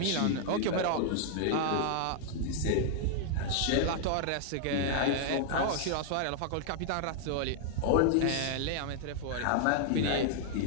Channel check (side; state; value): both; different; correlation 0.00